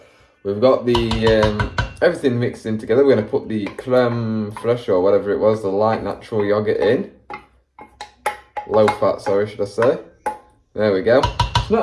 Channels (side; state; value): both; identical; correlation 1.00